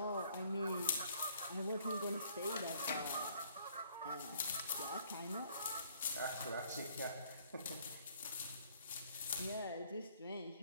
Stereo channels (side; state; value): both; inverted; correlation -0.62